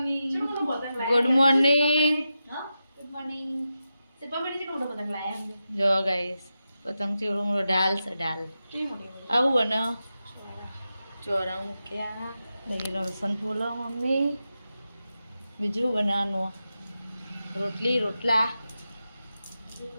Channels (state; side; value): inverted; both; correlation -0.90